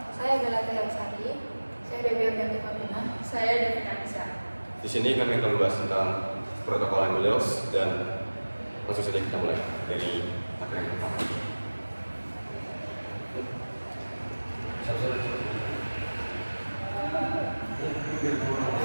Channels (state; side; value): inverted; both; correlation -1.00